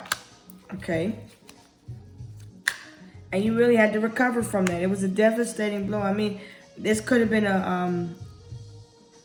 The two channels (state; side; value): identical; both; correlation 1.00